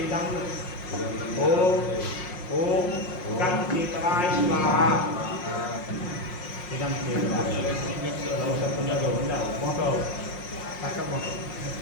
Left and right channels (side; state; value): right; late; 5.5 ms